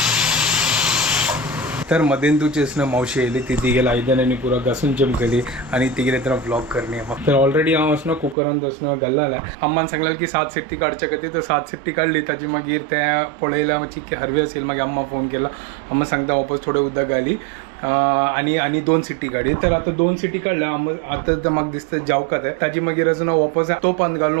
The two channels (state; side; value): drops out; left; at 8.3 s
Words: तर मदेंदूची असणं मावशी येयली ती तिगेला आयदनांनी पुरा घासून चमकली आणि तिगेले तर व्लॉग करणे तर ऑलरेडी हांव असणं कुकरांत असणं घाल्लेलें अम्मान सांगलें की 7 सिट्टी काडच्या खातीर तर 7 सिट्टी काडली ताजी मागीर तें पळयल्यार मातशी हरवी आसली मागीर अम्मा फोन केला अम्मा सांगता वापस थोडें उदक घाली आनी 2 सिट्टी काडी तर आतां 2 सिट्टी काडल्या आतां तर म्हाका दिसता जावका तें ताजी मागीर असणं वापस तोपांत